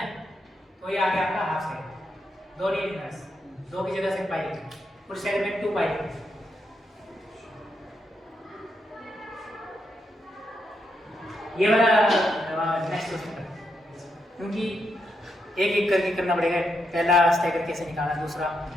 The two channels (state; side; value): normal; both; correlation 0.82